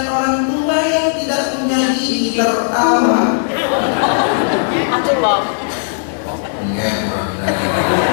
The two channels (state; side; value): silent; right; 59 dB below the other